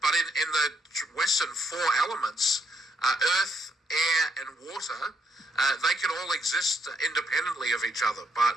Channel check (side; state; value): both; normal; correlation 0.75